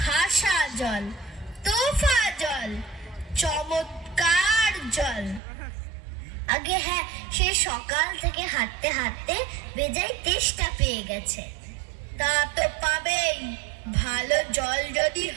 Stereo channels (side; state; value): left; drops out; at 5.4 s